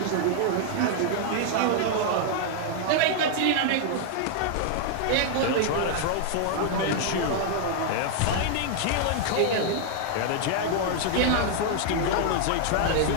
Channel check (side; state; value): both; different; correlation 0.00